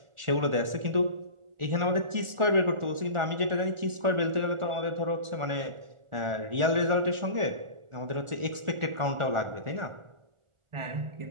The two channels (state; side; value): late; left; 1.4 ms